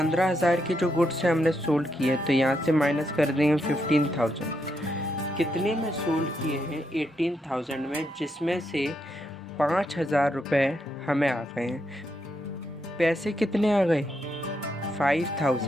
के जो गुड्स हैं हमने सोल्ड किए, तो यहाँ से माइनस कर देंगे 15,000। कितने में सोल्ड किए हैं? 18,000 में, जिसमें से 5,000 रुपये हमें आ गए हैं। पैसे कितने आ गए?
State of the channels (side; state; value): both; normal; correlation 0.80